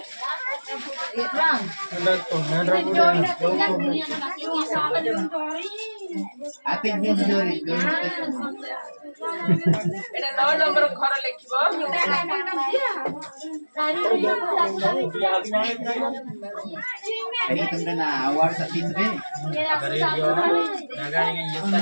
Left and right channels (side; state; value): both; inverted; correlation -1.00